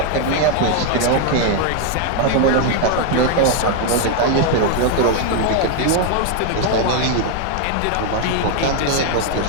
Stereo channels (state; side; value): different; both; correlation 0.01